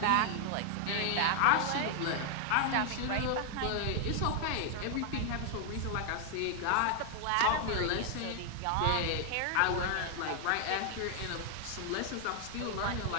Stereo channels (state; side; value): different; both; correlation 0.00